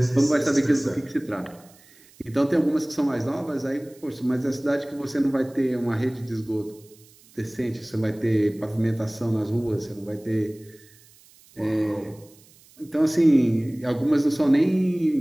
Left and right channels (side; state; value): right; noise; hiss, 27 dB below the sound